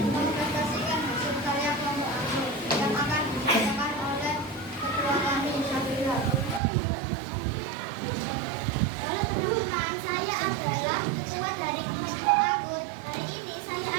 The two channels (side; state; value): left; drops out; at 6.6 s